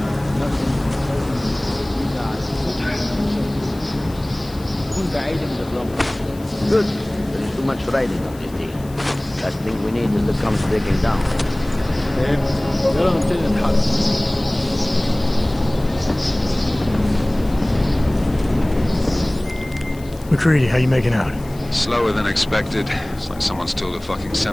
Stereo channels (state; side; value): noise; left; hiss, 22 dB below the sound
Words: Good. There is too much riding on this deal. Last thing we need is the comes breaking down. McCready, how you making out? Slower than expected. It's like someone's tilled a fucking